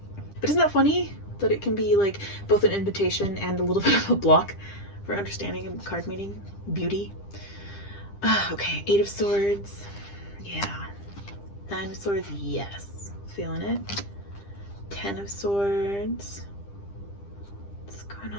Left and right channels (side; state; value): right; late; 10 ms